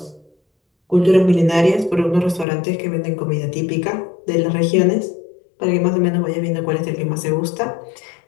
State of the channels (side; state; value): right; drops out; at 2.5 s